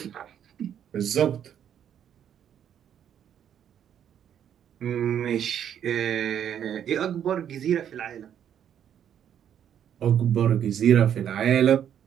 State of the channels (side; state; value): left; quieter; 9.4 dB